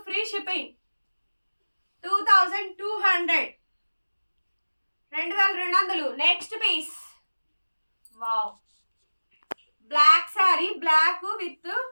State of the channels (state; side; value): inverted; both; correlation -1.00